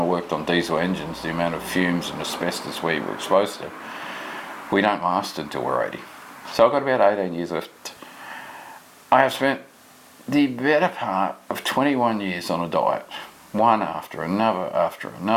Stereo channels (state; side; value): identical; both; correlation 1.00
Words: worked on diesel engines, the amount of fumes and asbestos we were exposed to. We don't last until we're 80. So I've got about 18 years left. I have spent the better part of 21 years on a diet, one after another, after